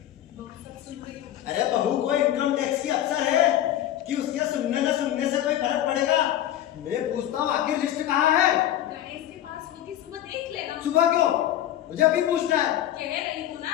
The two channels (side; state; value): right; quieter; 12.2 dB